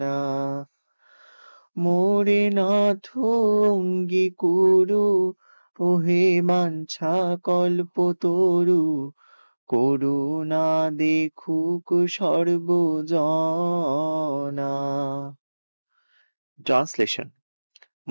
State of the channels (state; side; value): inverted; both; correlation -1.00